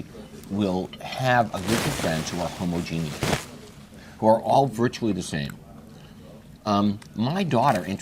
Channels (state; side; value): identical; both; correlation 1.00